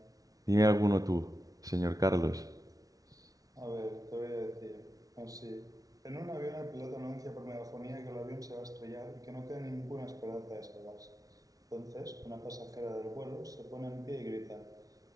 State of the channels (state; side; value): late; left; 0.18 ms